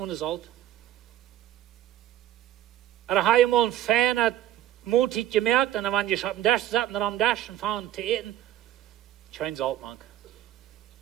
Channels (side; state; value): left; quieter; 12.8 dB